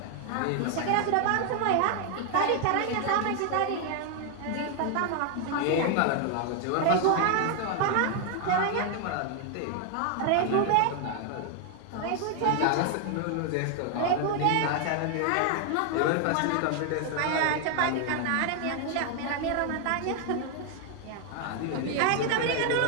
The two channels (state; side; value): different; both; correlation 0.00